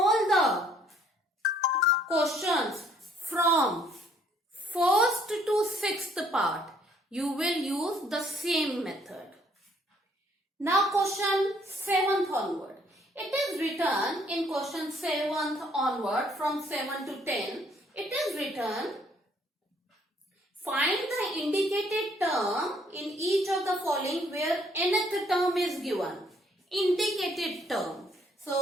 the questions from first to sixth part, you will use the same method. Now question 7th onward. It is written in question 7th onward from 7 to 10. It is written, find the indicated term in each of the following where nth term is given. Indicated term.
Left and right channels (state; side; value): normal; both; correlation 0.64